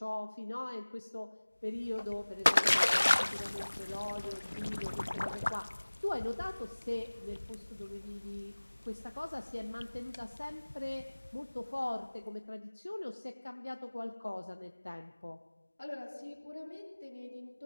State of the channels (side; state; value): both; inverted; correlation -1.00